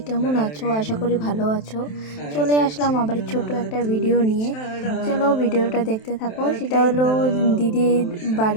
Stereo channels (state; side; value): late; right; 27 ms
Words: কেমন আছো? আশা করি ভালো আছো। চলে আসলাম আবার ছোট একটা ভিডিও নিয়ে। চলো ভিডিওটা দেখতে থাকো। সেটা হলো দিদির